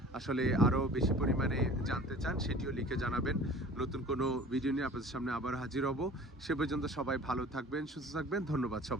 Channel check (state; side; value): normal; both; correlation 0.44